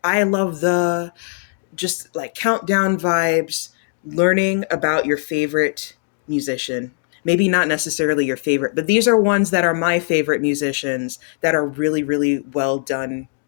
I love the just like countdown vibes, learning about your favorite musician. Maybe not necessarily your favorite, but these are ones that are my favorite musicians that are really, really well done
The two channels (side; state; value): right; silent; digital silence